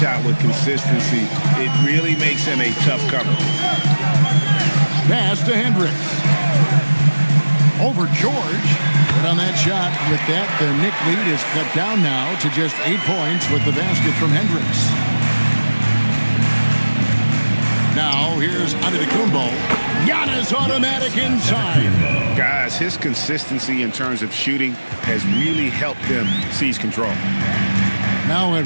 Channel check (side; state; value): both; inverted; correlation -1.00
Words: with consistency, it really makes him a tough cover. Pass to Hendricks. Over George. But on that shot, with that, the Knick lead is cut down now to just 8 points with the basket from Hendricks. Now, here's Antetokounmpo. Giannis automatic inside. Guys, his consistency in terms of shooting has really helped them seize control. Now